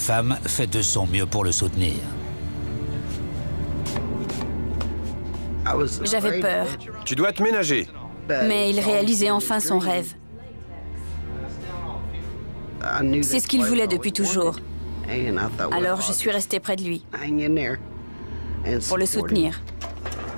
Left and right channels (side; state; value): both; inverted; correlation -1.00